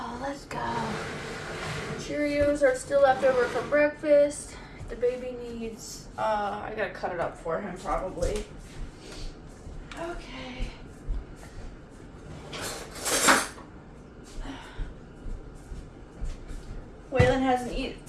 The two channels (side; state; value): both; identical; correlation 1.00